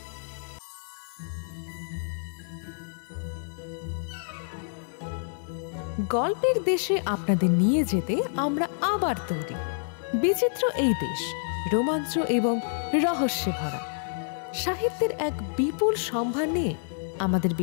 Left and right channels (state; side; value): silent; right; digital silence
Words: গল্পের দেশে আপনাদের নিয়ে যেতে আমরা আবার তৈরি। বিচিত্র এই দেশ রোমাঞ্চ এবং রহস্যে ভরা। সাহিত্যের এক বিপুল সম্ভার নিয়ে আমাদের